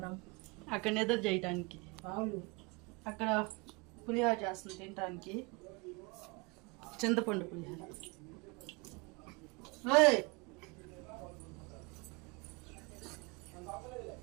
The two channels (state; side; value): quieter; left; 28.4 dB